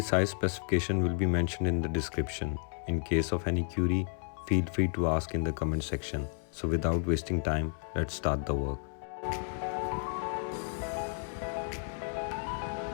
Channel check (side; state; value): right; silent; 56 dB below the other